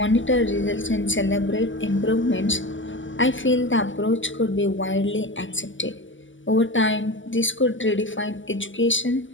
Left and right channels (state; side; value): late; right; 0.55 ms